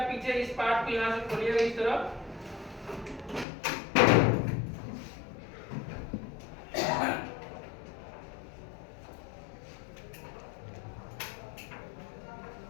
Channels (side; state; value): right; drops out; at 3.5 s